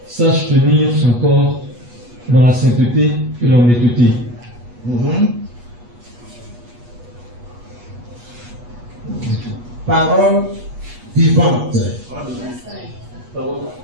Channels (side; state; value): left; late; 8.2 ms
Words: sache tenir son corps dans la sainteté et l'honnêteté. Parole vivante.